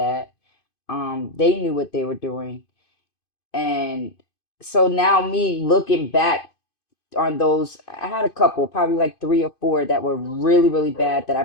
They knew what they were doing, and so now me looking back on those, I had a couple, probably like three or four that were really, really bad that I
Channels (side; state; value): right; late; 2.5 ms